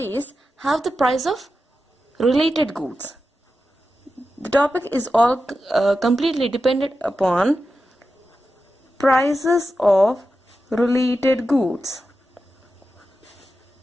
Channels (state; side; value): normal; both; correlation 0.91